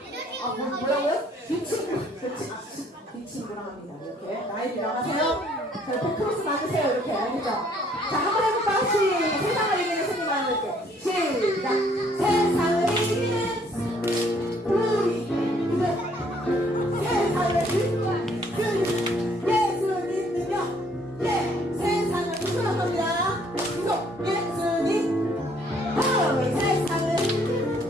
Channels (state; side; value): normal; both; correlation 0.63